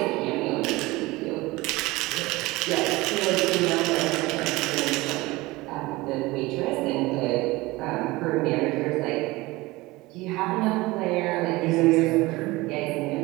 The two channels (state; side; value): quieter; left; 21.0 dB